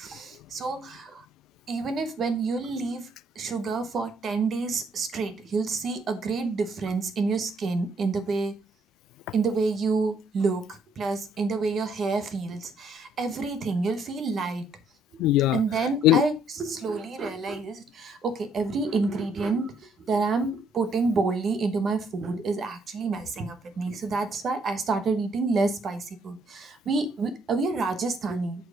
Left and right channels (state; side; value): normal; both; correlation 0.67